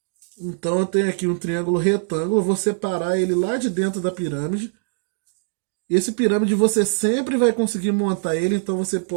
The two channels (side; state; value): left; silent; digital silence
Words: Então eu tenho aqui um triângulo retângulo, eu vou separar ele lá de dentro da pirâmide. Esse pirâmide você sempre vai conseguir montar ele, então você